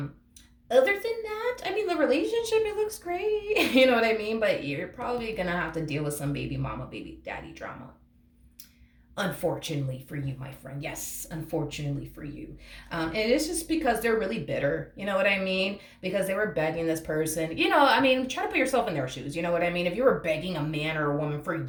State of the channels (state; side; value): identical; both; correlation 1.00